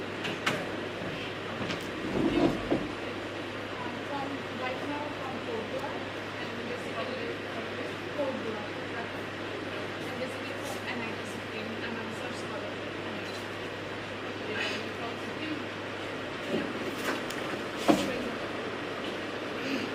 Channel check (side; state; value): both; identical; correlation 1.00